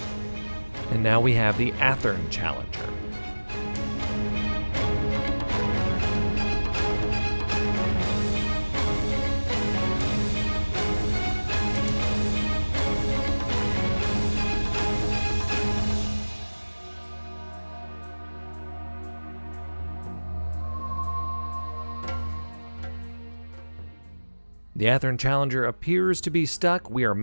And now we have the Athern Challenger. The Athern Challenger appears to be stuck. We are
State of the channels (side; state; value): both; inverted; correlation -1.00